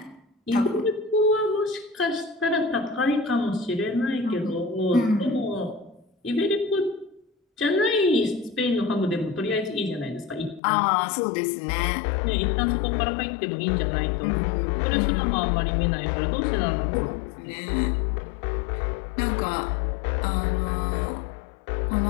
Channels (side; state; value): right; drops out; at 10.6 s